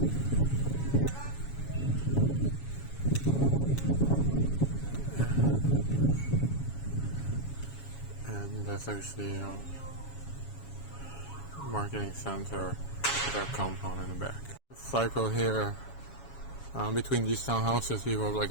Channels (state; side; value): late; right; 7.2 ms